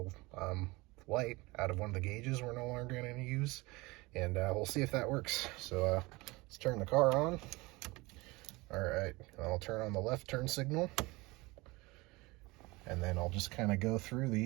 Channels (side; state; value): left; quieter; 23.1 dB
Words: light out of one of the gauges we're no longer going to use, and we'll see if that works. So let's turn the car on. All right, I'll turn on the left turn signal, and then I'll just kind of go through